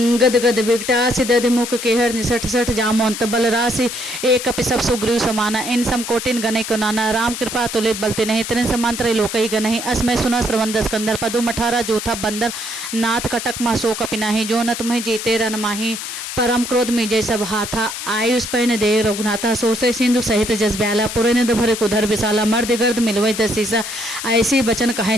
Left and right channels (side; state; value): left; noise; hiss, 7 dB below the sound